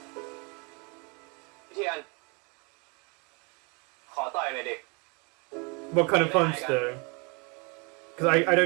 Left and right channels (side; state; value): left; quieter; 31.9 dB